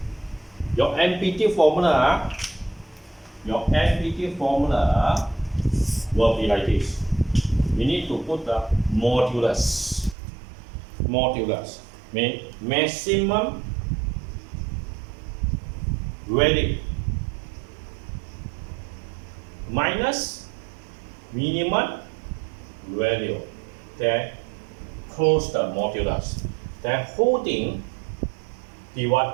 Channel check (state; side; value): drops out; left; at 10.2 s